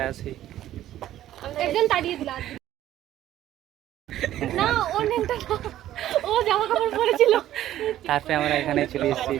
একজন তাড়িয়ে দিল না, ওর নেমটা ও জামা কাপড় পরেছিল। তারপরে আমরা এখানে চলে এসেছি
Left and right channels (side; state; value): left; quieter; 12.9 dB